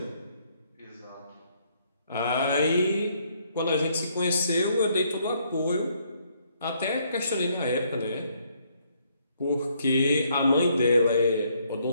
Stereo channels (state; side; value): inverted; both; correlation -0.69